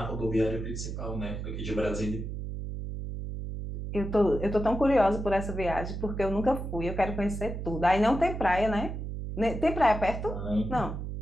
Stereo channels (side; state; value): right; noise; hum, 6 dB below the sound